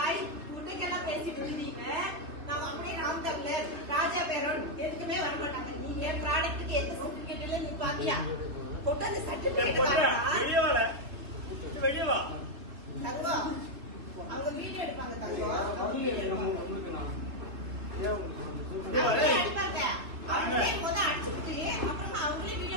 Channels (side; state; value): left; late; 3.4 ms